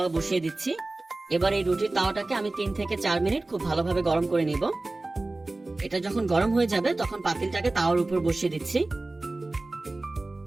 বসিয়ে দিচ্ছি। এবার এই রুটির তাওয়াটাকে আমি 3 থেকে 4 মিনিট খুব ভালোভাবে গরম করে নিব। এটা যখন গরম হয়ে যাবে তখন পাতিলটাকে তাওয়ার উপর বসিয়ে দিচ্ছি।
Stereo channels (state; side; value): quieter; left; 3.0 dB